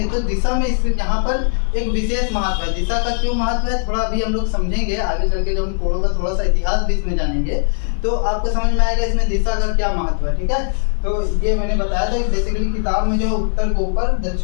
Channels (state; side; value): silent; right; digital silence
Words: तो दिशा में इस यहाँ पर एक विशेष महत्व है। दिशा का क्यों महत्व है थोड़ा अभी हम लोग समझेंगे, आगे चल के जब हम कोणों का थोड़ा सा इतिहास भी इसमें जानेंगे तो आपको समझ में आएगा इसमें दिशा का क्या महत्व है, ठीक है। तो ये मैंने बताया था कि बेसिकली किताब में जो उत्तर को ऊपर,